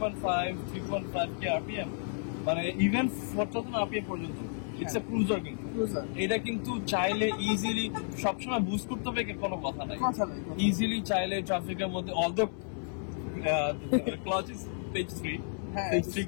K RPM মানে ইভেন 4000 আরপিএম পর্যন্ত ইটস এ ক্রুজার কিন্তু Cruiser, এটা কিন্তু চাইলে ইজিলি সবসময় বুস্ট করতে হবে কোনো কথা নাই কথা নাই, কথা নাই। ইজিলি চাইলে ট্রাফিকের মধ্যে অলদো ক্লাচ ইজ পেজ 3 হ্যাঁ, পেজ 3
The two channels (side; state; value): right; silent; 56 dB below the other